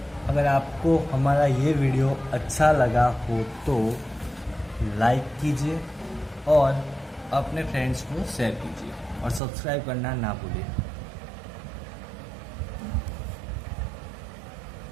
अगर आपको हमारा ये वीडियो अच्छा लगा हो तो लाइक कीजिए और अपने फ्रेंड्स को शेयर कीजिए और सब्सक्राइब करना ना भूलिए।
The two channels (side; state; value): left; drops out; at 9.4 s